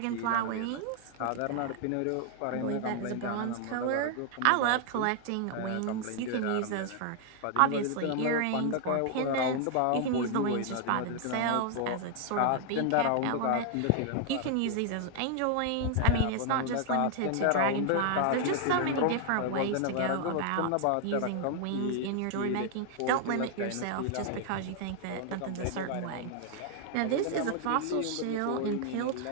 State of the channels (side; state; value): both; different; correlation 0.00